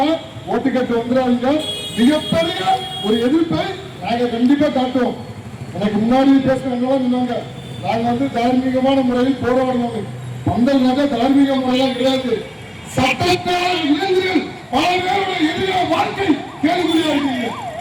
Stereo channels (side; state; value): both; identical; correlation 1.00